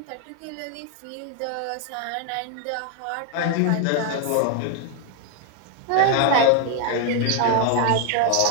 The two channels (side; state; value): both; different; correlation 0.01